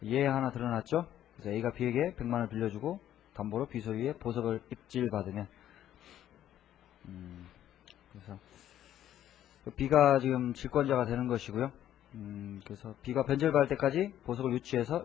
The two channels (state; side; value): quieter; right; 11.6 dB